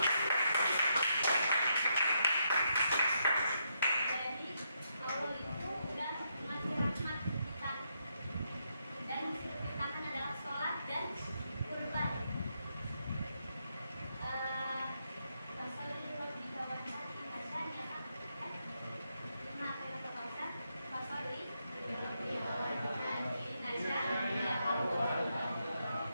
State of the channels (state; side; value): inverted; both; correlation -0.80